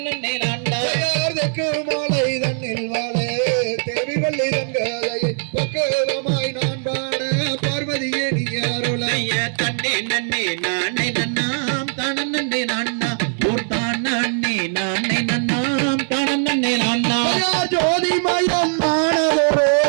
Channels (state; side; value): silent; left; 64 dB below the other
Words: நன்னாம் யார் தெற்கு மாலை தன்னில் வாழே தேவி வள்ளி தங்காதையை பக்குவமாய் நான் பாட பார்வதியே நீ அருளை செய்ய தன்னே நன்னே நானே நன்னாம் தனனே நன்னாம் பூர்த்தான் நன்னே நானே நன்னாம் தனனே நன்னாம் யார் ஜோதி மயம் ஆனதொரு